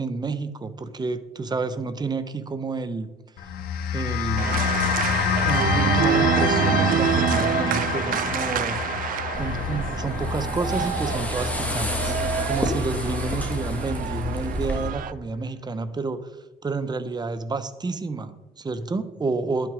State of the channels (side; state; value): both; normal; correlation 0.42